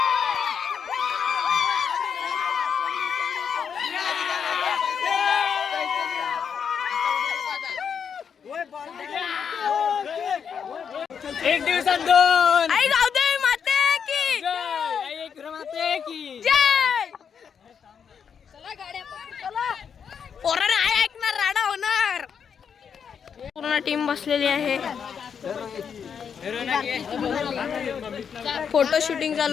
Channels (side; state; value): right; quieter; 7.1 dB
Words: एक दिवसात 2. आई जाऊ दे माते की माते की जय. पोराने आहे ऐकणार, राडा होणार. पूर्ण टीम बसलेली आहे. फोटो शूटिंग